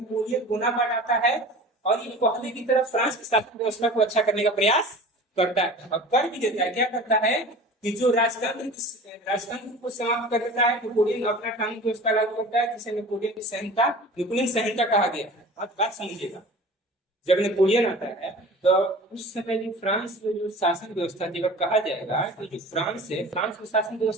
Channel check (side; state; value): both; normal; correlation 0.40